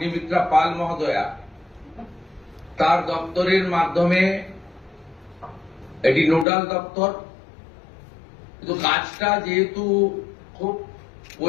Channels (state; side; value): drops out; right; at 6.5 s